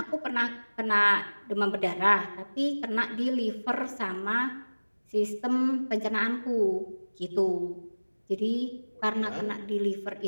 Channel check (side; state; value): both; inverted; correlation -1.00